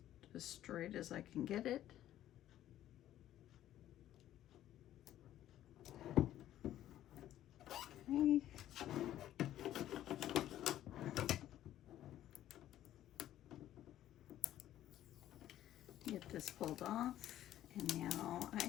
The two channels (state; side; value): quieter; right; 12.6 dB